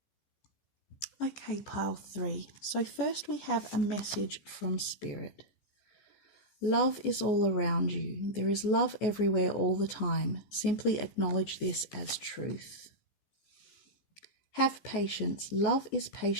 Okay, pile 3. So first we have a message from Spirit. Love is all around you. There is love everywhere all the time. Simply acknowledge this as truth. Have patience. Love is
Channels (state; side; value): late; right; 14 ms